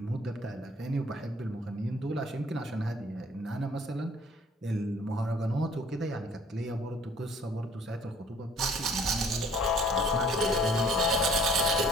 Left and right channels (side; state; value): both; normal; correlation 0.55